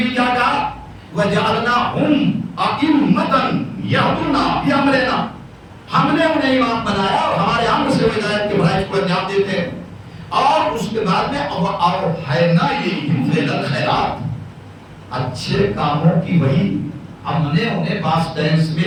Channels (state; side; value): identical; both; correlation 1.00